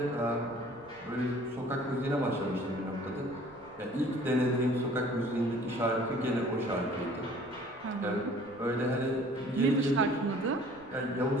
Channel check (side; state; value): left; noise; rumble, 26 dB below the sound